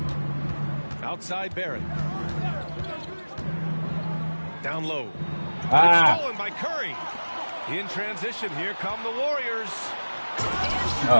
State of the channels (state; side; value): inverted; both; correlation -1.00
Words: Outside Barrett. Down low. It's stolen by Curry. In transition, here come the Warriors.